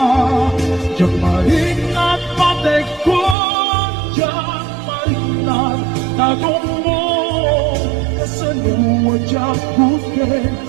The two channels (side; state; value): left; drops out; at 3.4 s